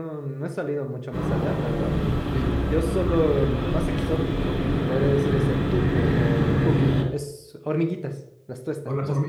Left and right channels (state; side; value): identical; both; correlation 1.00